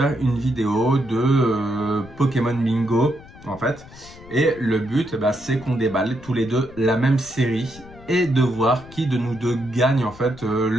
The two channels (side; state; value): left; noise; rumble, 20 dB below the sound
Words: une vidéo de Pokémon Bingo, en fait. Et le but, c'est qu'on déballe tous les deux la même série et de voir qui de nous deux gagne en fait